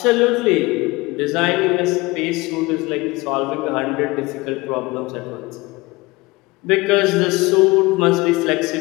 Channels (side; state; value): right; quieter; 22.8 dB